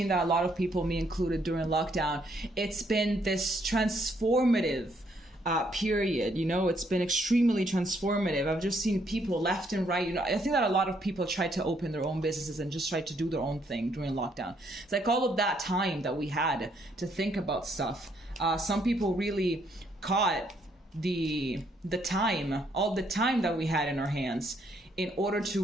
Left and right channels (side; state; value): both; normal; correlation 0.71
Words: that a lot of people, me included, during lockdown, it's been this transformative period, it's been extremely transformative. I've just seen people left and right, I think that a lot of people tried to open their own businesses and just tried to do their own thing during lockdown. It's like all of that time that we had to think about stuff. Some people really caught all the time that we had in our hands in order